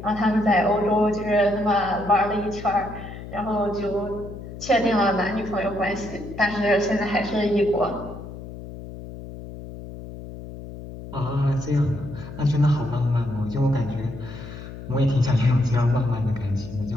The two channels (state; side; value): noise; left; hum, 12 dB below the sound